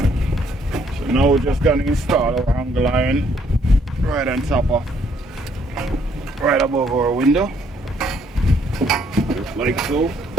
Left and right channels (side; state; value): both; normal; correlation 0.67